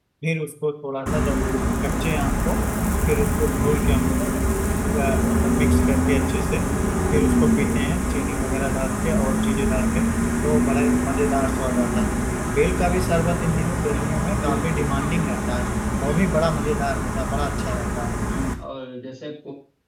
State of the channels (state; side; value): identical; both; correlation 1.00